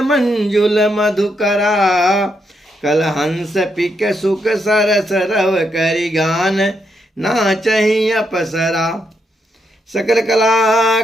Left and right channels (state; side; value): normal; both; correlation 0.79